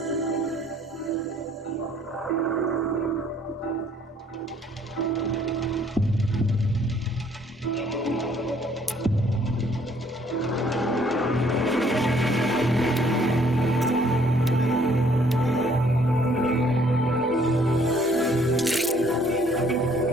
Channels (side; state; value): both; normal; correlation 0.62